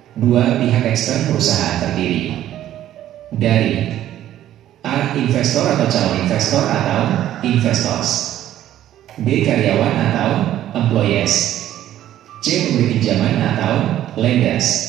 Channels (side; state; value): left; quieter; 12.4 dB